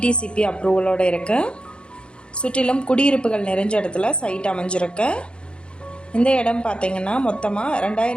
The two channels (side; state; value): right; late; 0.055 ms